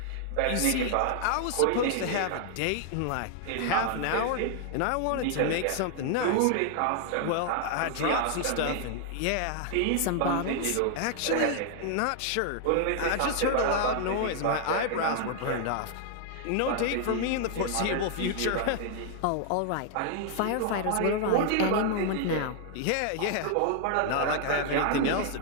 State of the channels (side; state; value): both; different; correlation 0.00